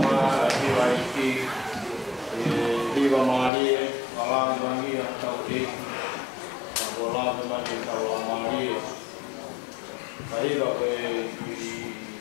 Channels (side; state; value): right; drops out; at 3.5 s